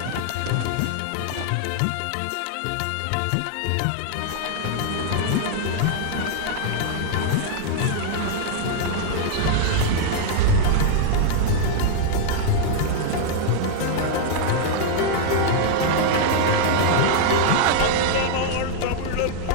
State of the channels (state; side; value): different; both; correlation -0.01